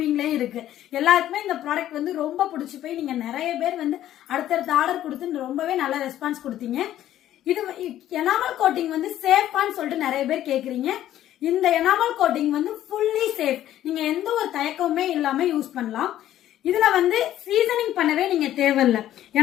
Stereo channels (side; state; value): right; quieter; 12.5 dB